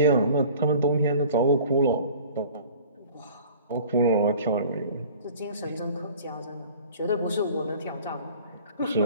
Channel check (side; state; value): both; inverted; correlation -0.47